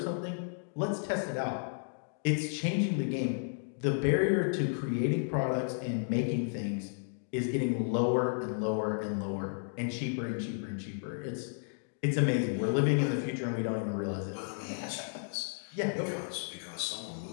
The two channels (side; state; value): right; silent; digital silence